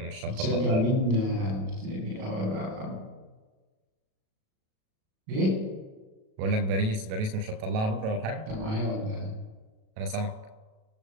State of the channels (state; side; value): late; left; 37 ms